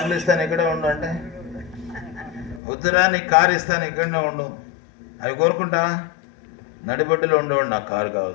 ఇస్తాను ఇక్కడే ఉండు అంటే, వద్దురా నీకు కారు ఇస్తాను ఇక్కడనే ఉండు, అవి కోరుకుంటా? నడిబొడ్డులో ఉండేవాడు, నాకు కారు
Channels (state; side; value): drops out; right; at 2.6 s